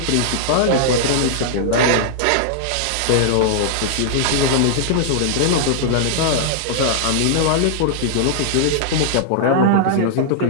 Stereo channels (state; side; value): different; both; correlation -0.01